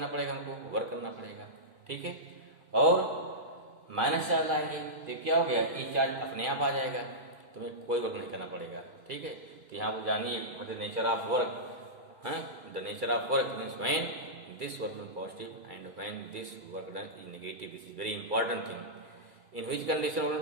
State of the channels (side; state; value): left; late; 2.3 ms